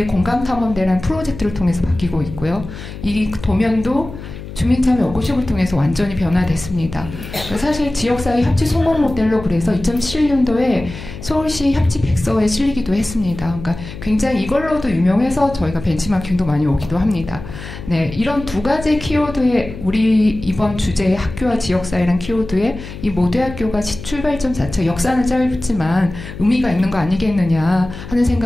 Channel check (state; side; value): noise; left; hum, 12 dB below the sound